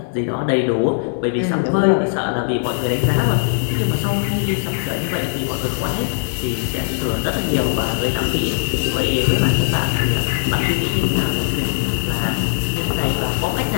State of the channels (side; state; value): right; silent; digital silence